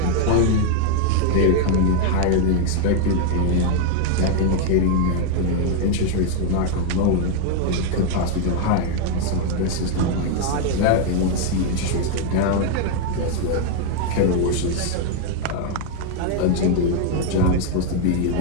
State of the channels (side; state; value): both; different; correlation 0.00